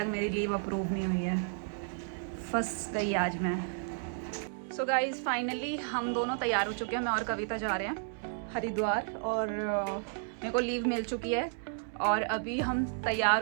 मेरी लीव अप्रूव नहीं हुई है। फंस गई आज मैं। सो गाइज फाइनली हम दोनों तैयार हो चुके हैं। मैं और कविता जा रहे हैं हरिद्वार और मेरे को लीव मिल चुकी है। और अभी हम तैयार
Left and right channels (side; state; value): left; silent; digital silence